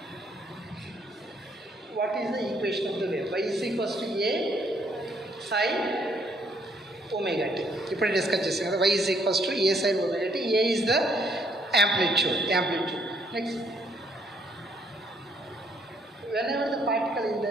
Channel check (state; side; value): normal; both; correlation 0.68